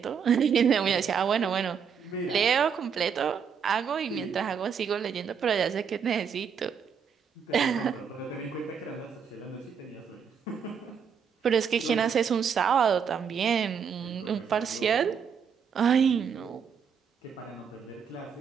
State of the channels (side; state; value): left; quieter; 6.9 dB